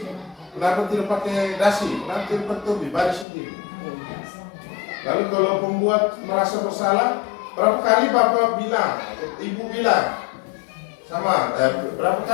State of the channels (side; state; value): right; drops out; at 3.2 s